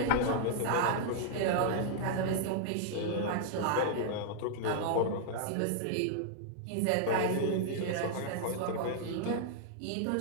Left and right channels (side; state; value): both; different; correlation -0.01